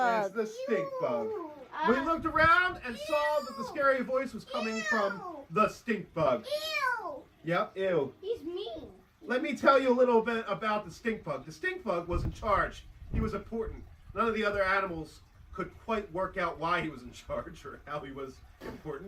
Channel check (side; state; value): both; identical; correlation 1.00